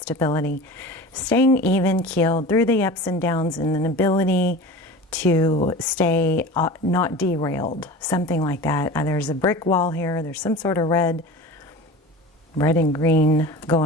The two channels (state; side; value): normal; both; correlation 0.34